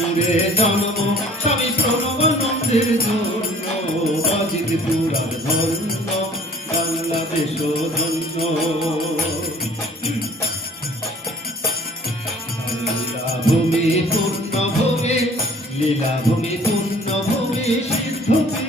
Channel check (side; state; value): both; normal; correlation 0.52